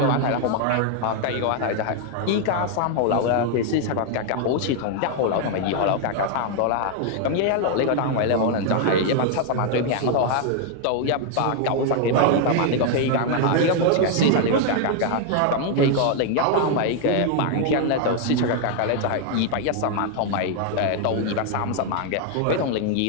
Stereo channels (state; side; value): different; both; correlation 0.00